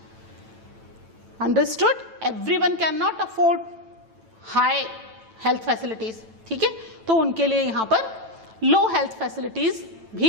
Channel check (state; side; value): late; left; 9.0 ms